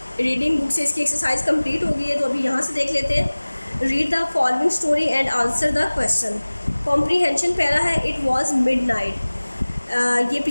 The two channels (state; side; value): inverted; both; correlation -1.00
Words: reading book से इसकी एक्सरसाइज कंप्लीट हो गई है, तो अभी यहाँ से देख लेते हैं। Read the following story and answer the question. Comprehension पहला है, इट वॉज मिड नाइट। ये